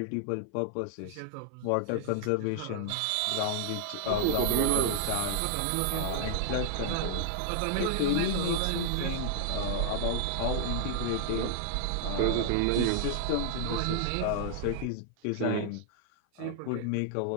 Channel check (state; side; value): different; both; correlation -0.01